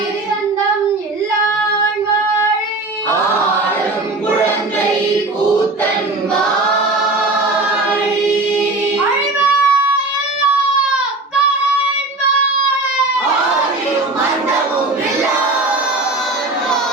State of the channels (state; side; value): quieter; left; 3.0 dB